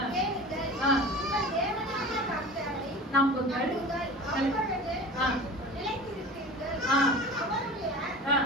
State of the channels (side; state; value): both; normal; correlation 0.37